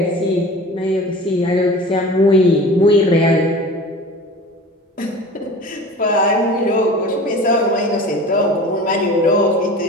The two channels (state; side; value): normal; both; correlation 0.38